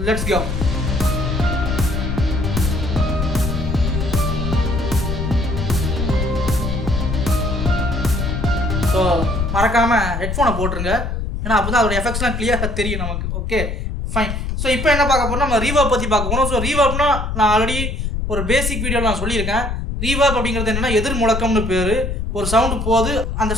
Let's go. ஸோ மறக்காமல் ஹெட்ஃபோனை போட்டுருங்க, ஏன்னா அப்போ தான் அதோட எஃபெக்ட்ஸ்லாம் கிளியராக தெரியும் நமக்கு. Okay fine. ஸோ இப்போ என்ன பார்க்க போகிறோம், நம்ம ரீவர்ப் பற்றி பார்க்க போகிறோம். ஸோ ரீவர்ப்னா நான் ஆல்ரெடி ஒரு பேசிக் வீடியோவில் நான் சொல்லியிருக்கேன். ரீவர்ப் அப்படிங்கிறது என்னென்னா எதிர் முழக்கம்னு பேர். ஒரு சவுண்டு போகுது, அந்த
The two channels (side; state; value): left; noise; rumble, 3 dB below the sound